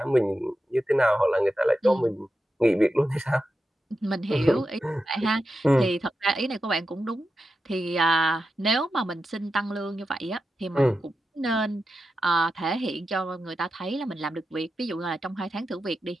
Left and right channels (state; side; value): normal; both; correlation 0.90